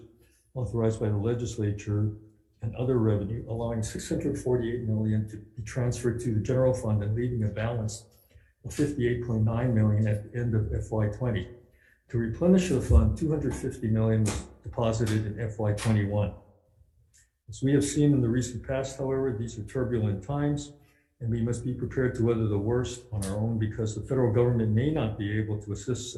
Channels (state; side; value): identical; both; correlation 1.00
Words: authorized by the legislature and other revenue, allowing $648 million to be transferred to the general fund and leaving a balance of $58.9 million at the end of FY20. To replenish the fund, $250 million was deposited in FY21. As we have seen in the recent past, however, these are turbulent times, and we must be prepared to weather the worst on our own because the federal government may not be able to assist